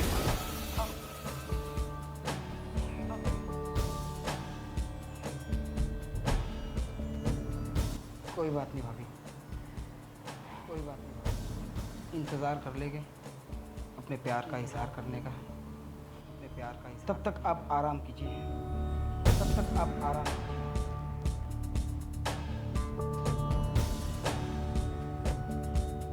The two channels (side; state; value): both; identical; correlation 1.00